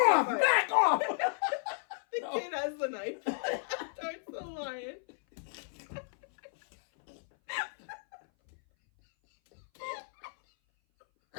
Back off! The kid has the knife towards the lion.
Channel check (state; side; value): silent; right; 56 dB below the other